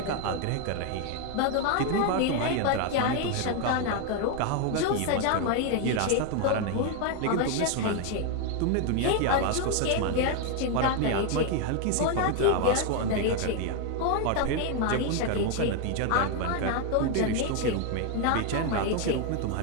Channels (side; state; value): both; different; correlation 0.01